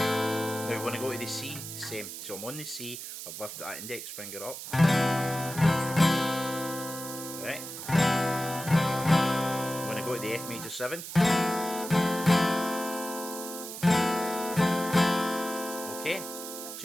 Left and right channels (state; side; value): noise; right; hiss, 9 dB below the sound